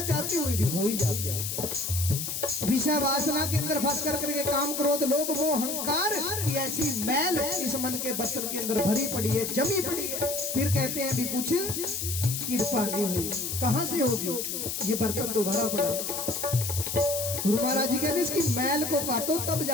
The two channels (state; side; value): noise; left; hiss, 3 dB below the sound